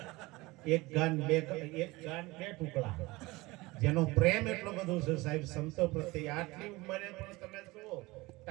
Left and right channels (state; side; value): quieter; left; 21.8 dB